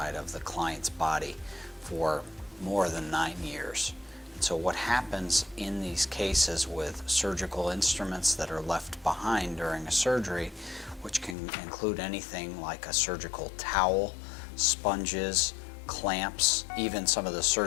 of the client's body for more than 9 years. And so what happens in these cases with surgical instruments that are left behind during a surgery, which can include anything like a surgical towel, sponges, clamps, even some of the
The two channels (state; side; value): drops out; right; at 11.4 s